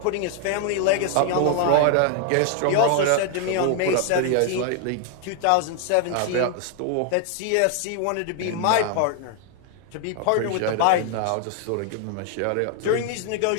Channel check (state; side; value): different; both; correlation 0.00